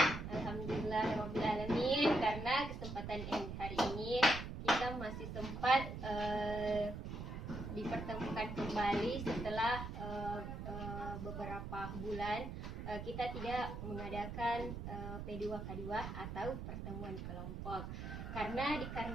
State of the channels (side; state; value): right; noise; rumble, 6 dB below the sound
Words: Alhamdulillahirrabbilalamin. Karena kesempatan hari ini kita masih sempat dipertemukan kembali setelah beberapa bulan kita tidak mengadakan P2K2 atau pertemuan kelompok karena